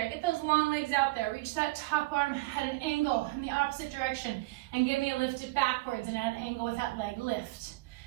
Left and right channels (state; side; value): quieter; left; 21.5 dB